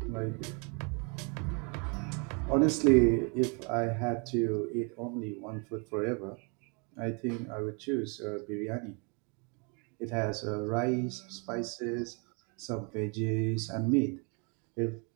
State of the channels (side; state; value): left; quieter; 34.8 dB